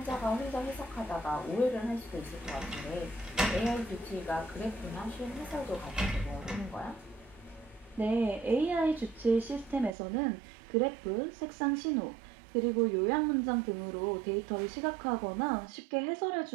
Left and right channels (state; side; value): drops out; left; at 9.9 s